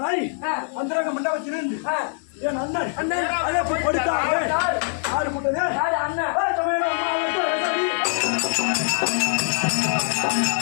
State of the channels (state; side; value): silent; right; digital silence